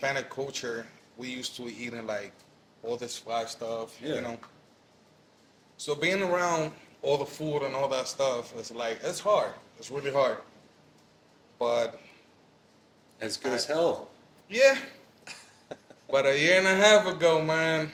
culture, we used to eating like all this fried stuff, Yeah. So being around all the food and all that stuff, it's hard. It's really hard. But As good as hell. yeah. But a year and a half ago, man,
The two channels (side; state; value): both; identical; correlation 1.00